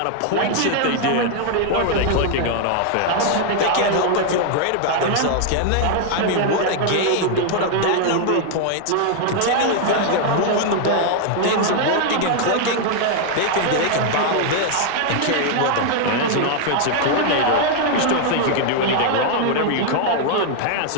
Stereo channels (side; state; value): both; different; correlation 0.00